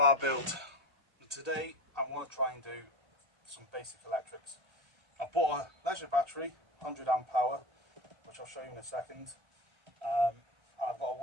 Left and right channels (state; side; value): late; left; 1.4 ms